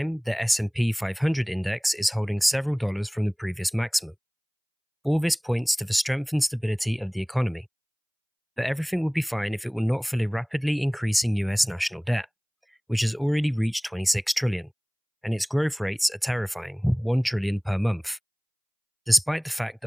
the S&P 500 index is holding several dollars from the previous maximum. All this points to the strength and stability of the economy. But everything would be fine if it were not for the rapidly increasing US national debt, which has already reached 26 trillion, and its growth rates are terrifying, 1 trillion per month, despite the fact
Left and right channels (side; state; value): both; identical; correlation 1.00